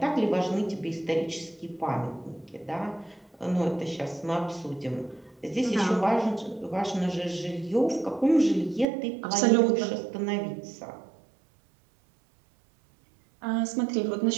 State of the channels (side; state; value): left; drops out; at 8.8 s